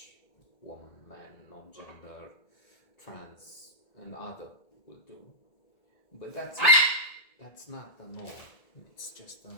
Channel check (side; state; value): right; late; 1.8 ms